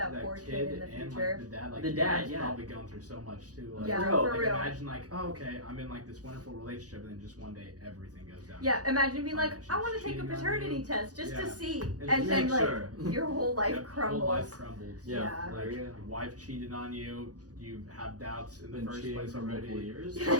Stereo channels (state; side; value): late; left; 0.67 ms